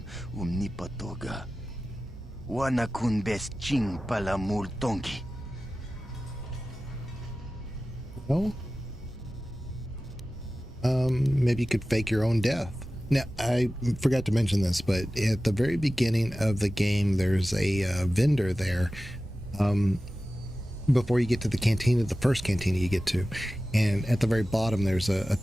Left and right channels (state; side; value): normal; both; correlation 0.95